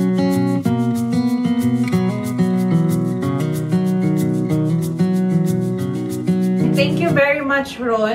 Thank you very much,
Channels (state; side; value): identical; both; correlation 1.00